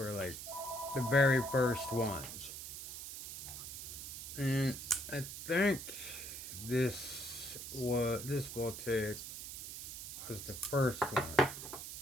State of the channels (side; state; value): right; noise; hiss, 8 dB below the sound